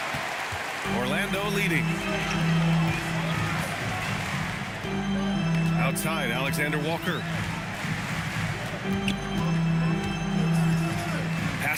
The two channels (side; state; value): both; identical; correlation 1.00